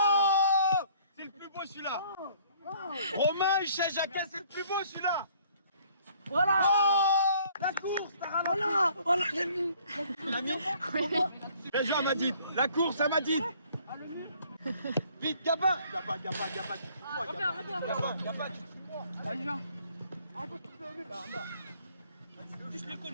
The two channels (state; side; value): inverted; both; correlation -0.58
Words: c'est le plus beau celui-là. Romain, Hichet, Jacquin, c'est le plus beau celui-là. Voilà. Oh, la course, t'as ralenti. Voilà, j'ai mis. T'as mis Bien joué Amadine. La course Amadine. Vite, Gabin. Gabin. Allez, viens.